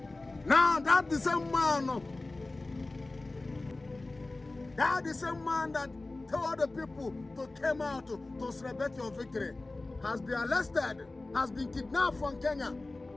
Now that the same man that told the people to come out to celebrate your victory has been arrested, has been kidnapped from Kenya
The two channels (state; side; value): quieter; right; 3.1 dB